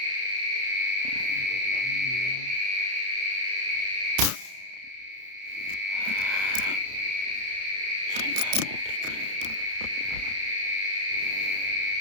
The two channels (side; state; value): left; late; 31 ms